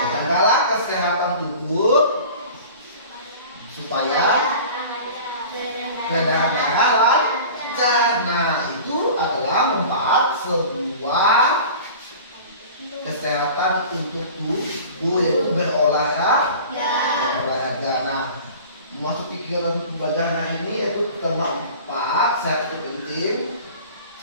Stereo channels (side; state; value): both; inverted; correlation -0.40